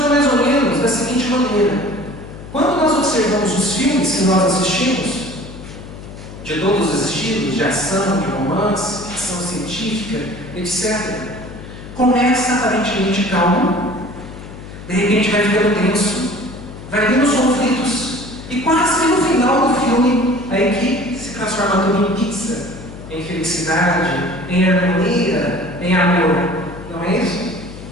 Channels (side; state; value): left; noise; hum, 14 dB below the sound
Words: mais ou menos da seguinte maneira: quando nós observamos os filmes que nós assistimos, de todos os estilos, de ação, de romance, ficção científica, etc., começa aparentemente calmo, de repente vai ficando tenso, vai vindo os conflitos, e quase no final do filme, a equipe se transforma tudo em pizza, em felicidade, em harmonia, em amor. Não é isso?